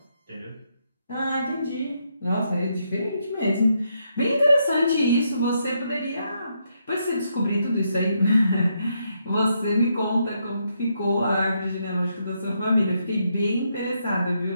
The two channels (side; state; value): both; inverted; correlation -0.78